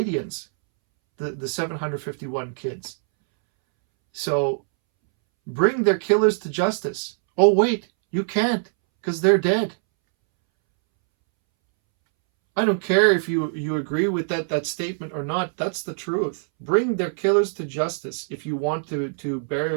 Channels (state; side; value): silent; left; 63 dB below the other